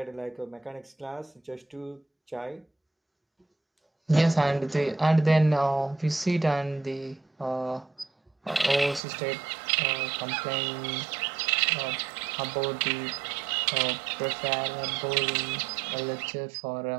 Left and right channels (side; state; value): left; drops out; at 9.0 s